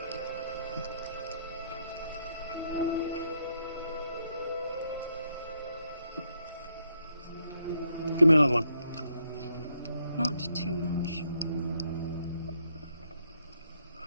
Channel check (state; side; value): inverted; both; correlation -0.75